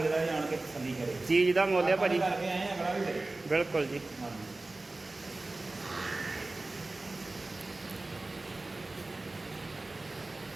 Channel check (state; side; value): quieter; left; 3.1 dB